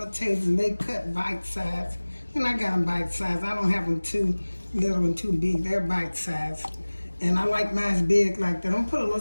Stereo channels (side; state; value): both; inverted; correlation -1.00